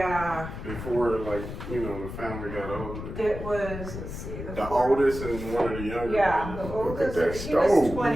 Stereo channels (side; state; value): left; noise; rumble, 8 dB below the sound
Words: Before, the family got older. it was, let's see. The oldest and one of the younger. Yeah, the Look at oldest, that he was stove,